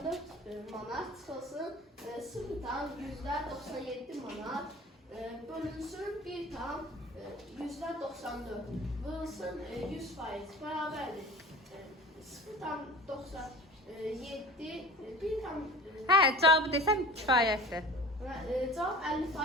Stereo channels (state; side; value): normal; both; correlation 0.39